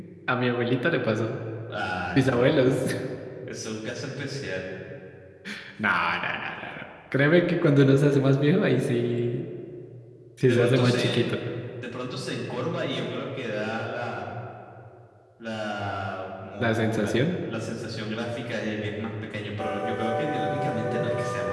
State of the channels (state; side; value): identical; both; correlation 1.00